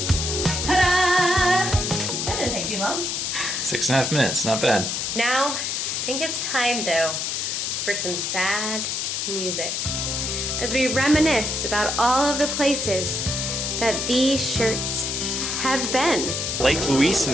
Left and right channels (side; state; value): left; noise; hiss, 1 dB below the sound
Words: Ta-da! That didn't take too long. 6.5 minutes, not bad. Now, I think it's time though for some sad music. As we reminisce about all of the places that these shirts have been. Lake Louise